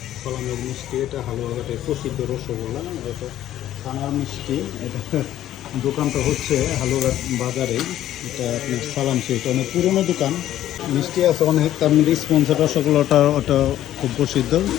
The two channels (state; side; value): quieter; right; 12.6 dB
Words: সালামের মিষ্টি, এটা হালুয়াঘাটের প্রসিদ্ধ রসগোল্লা। এটা ছানার মিষ্টি। এটা দোকানটা হচ্ছে হালুয়াঘাট বাজারে। এটা আপনার সালাম সুইট, অনেক পুরনো দোকান। মিষ্টি আছে অনেক, তার মধ্যে স্পঞ্জের রসগোল্লাটা ওটা খুব প্রসিদ্ধ।